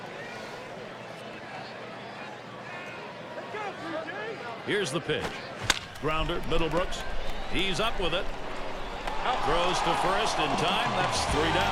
Here's the pitch. Grounder, Middlebrooks. He's up with it. Throws to first in time. That's 3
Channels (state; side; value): identical; both; correlation 1.00